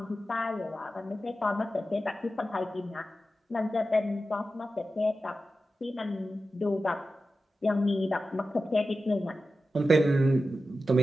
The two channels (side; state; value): both; normal; correlation 0.93